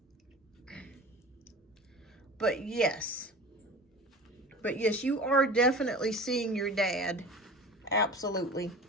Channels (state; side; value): normal; both; correlation 0.37